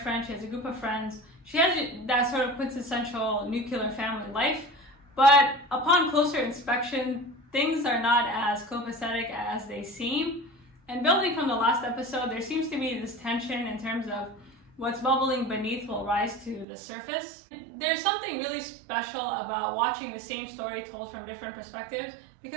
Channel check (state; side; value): drops out; left; at 16.7 s